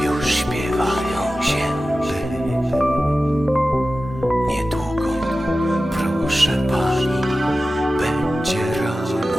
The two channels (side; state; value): both; normal; correlation 0.95